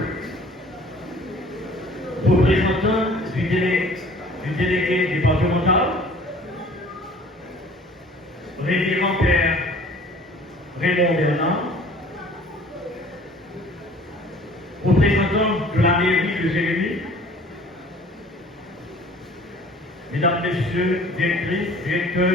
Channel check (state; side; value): normal; both; correlation 0.51